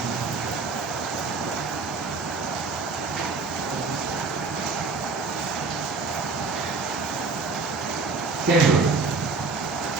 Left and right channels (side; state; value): left; quieter; 4.2 dB